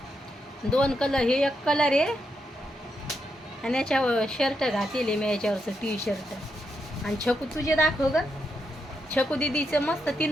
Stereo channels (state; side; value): normal; both; correlation 0.82